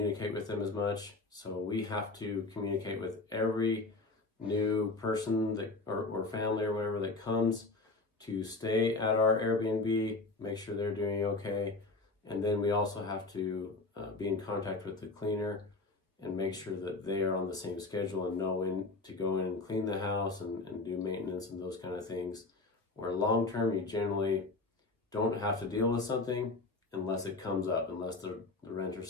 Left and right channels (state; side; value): quieter; right; 3.5 dB